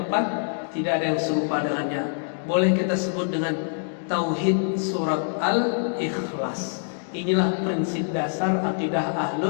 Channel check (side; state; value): right; silent; digital silence